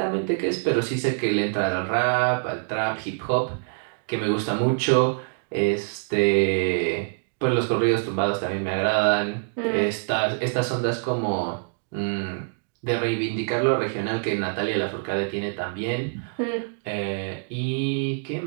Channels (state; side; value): silent; left; digital silence